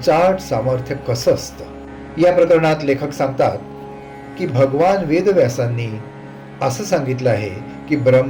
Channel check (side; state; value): both; identical; correlation 1.00